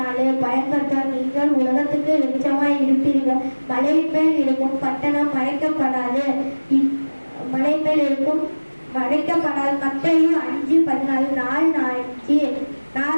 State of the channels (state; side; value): inverted; both; correlation -1.00